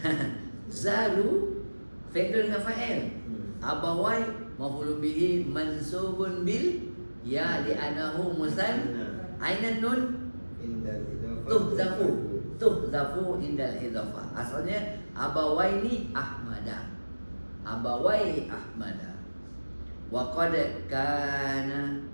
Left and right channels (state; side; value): inverted; both; correlation -1.00